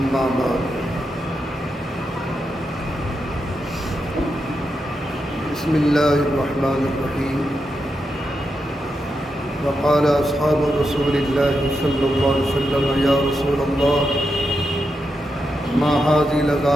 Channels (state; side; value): normal; both; correlation 0.86